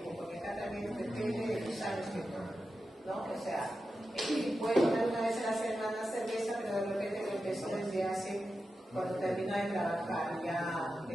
porque acá también depende de los años que ¿no? O sea, puede tomar una vez a la semana cerveza, pero de repente lo empezó desde hace, cuando terminó de trabajar, ya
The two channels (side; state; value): both; normal; correlation 0.91